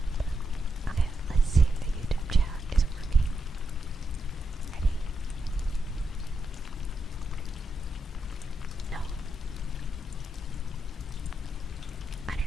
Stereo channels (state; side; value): normal; both; correlation 0.84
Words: Okay, let's see if the YouTube chat is working. Ready? No. I